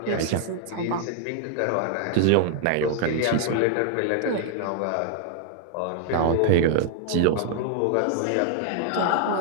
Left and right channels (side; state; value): both; different; correlation 0.00